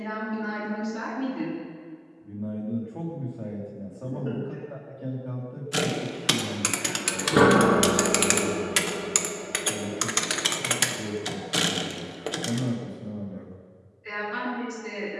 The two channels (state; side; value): identical; both; correlation 1.00